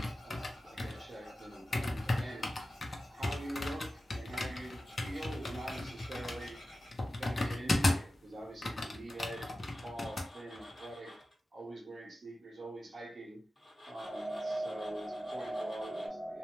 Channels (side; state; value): both; normal; correlation 0.94